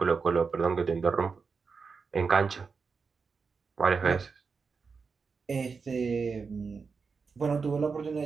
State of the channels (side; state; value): left; quieter; 5.1 dB